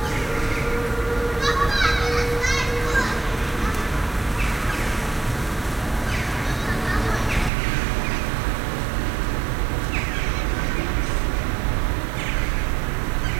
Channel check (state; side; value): drops out; left; at 7.5 s